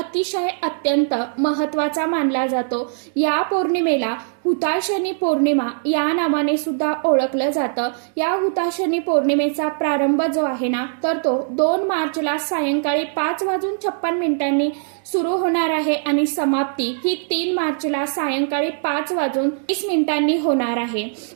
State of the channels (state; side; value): silent; left; digital silence